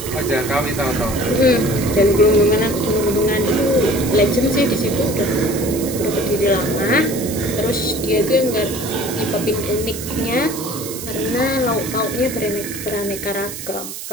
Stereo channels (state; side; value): noise; right; hiss, 9 dB below the sound